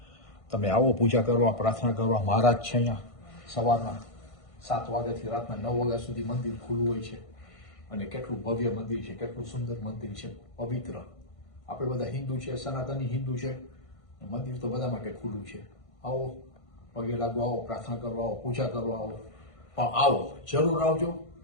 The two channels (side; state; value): right; late; 1.5 ms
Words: તમે આવો પૂજા કરવા, પ્રાર્થના કરવા. મહારાજ છે અહીંયા. સવારના 7 વાગ્યાથી રાતના 9 વાગ્યા સુધી મંદિર ખુલ્લું હોય છે. અને કેટલું ભવ્ય મંદિર છે, કેટલું સુંદર મંદિર છે, પવિત્ર. આપણે બધા હિન્દુ છે, સનાતની હિન્દુ છે. મંદિર તો બધા માટે ખુલ્લું છે. આવો, પગે લાગવા આવો, પ્રાર્થના કરવા આવો, પૂજા કરવા આવો. પણ આવો, જરૂર આવજો.